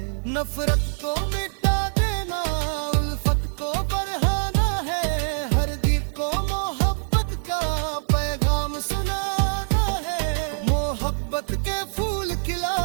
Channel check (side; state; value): left; silent; digital silence